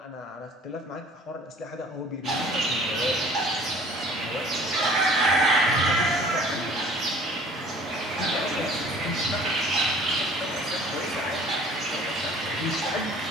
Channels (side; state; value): both; normal; correlation 0.50